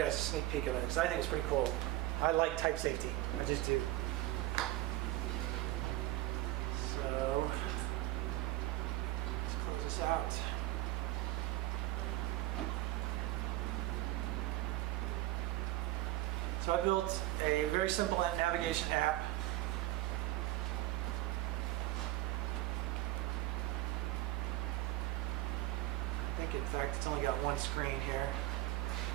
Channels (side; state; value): left; quieter; 17.5 dB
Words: guys a sneak peek of it because I think it's pretty cool. I like type safety. I just do. So let's close this out. So I built a very simple navigation app. I think, in fact, it's only got one screen here.